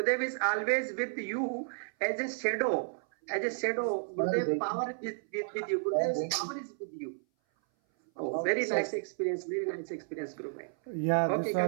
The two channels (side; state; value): left; silent; 56 dB below the other